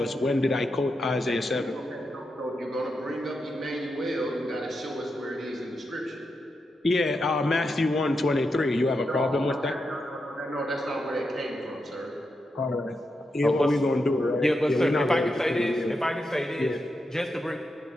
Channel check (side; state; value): both; normal; correlation 0.86